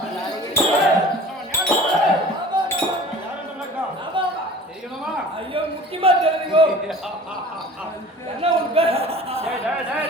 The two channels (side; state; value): both; normal; correlation 0.43